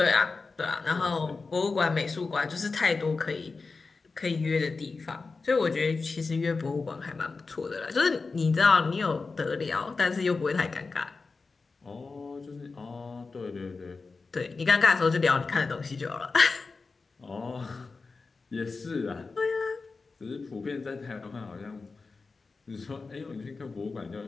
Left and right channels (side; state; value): right; quieter; 4.2 dB